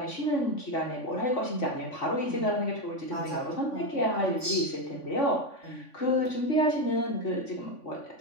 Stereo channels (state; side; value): late; right; 3.5 ms